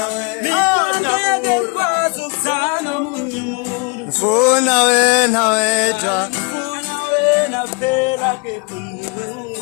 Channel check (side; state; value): right; quieter; 31.8 dB